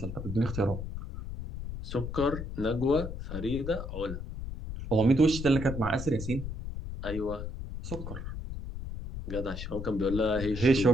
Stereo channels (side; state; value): left; noise; rumble, 7 dB below the sound